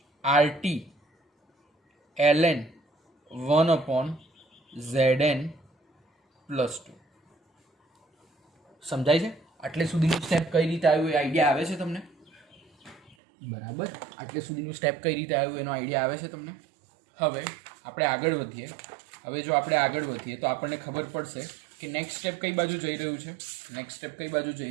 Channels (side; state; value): left; drops out; at 13.2 s